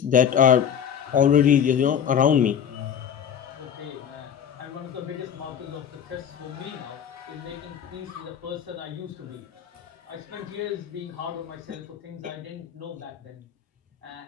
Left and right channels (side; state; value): right; quieter; 8.6 dB